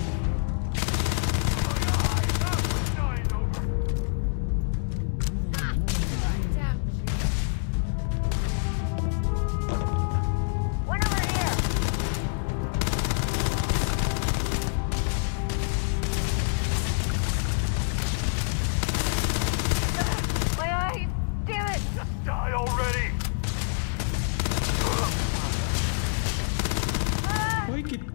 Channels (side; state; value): right; silent; digital silence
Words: Die already! ओए